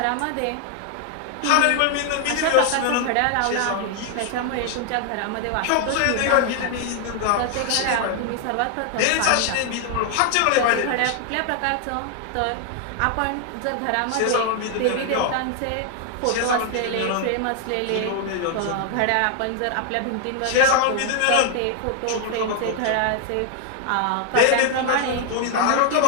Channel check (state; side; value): different; both; correlation 0.00